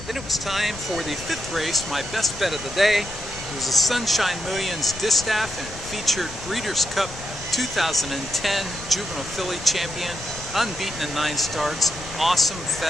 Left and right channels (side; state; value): left; noise; rumble, 14 dB below the sound